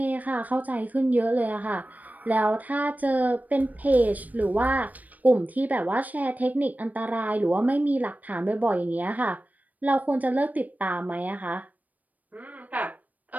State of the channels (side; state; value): left; late; 0.077 ms